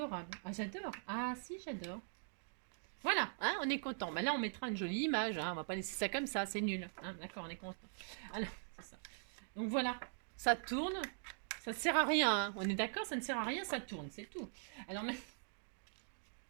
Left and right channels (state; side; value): silent; left; digital silence